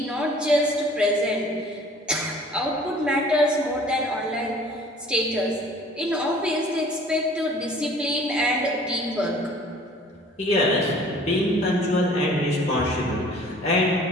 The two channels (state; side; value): normal; both; correlation 0.51